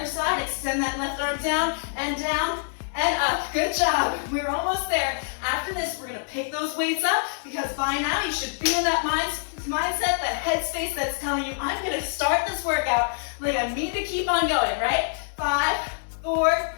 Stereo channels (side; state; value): right; silent; 61 dB below the other